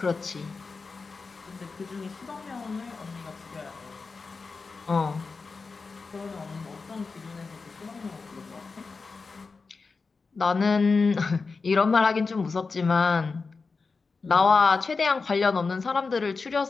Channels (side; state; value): right; quieter; 4.4 dB